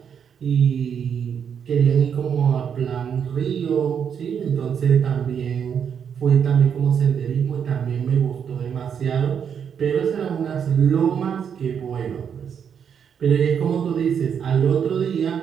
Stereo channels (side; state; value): left; quieter; 7.6 dB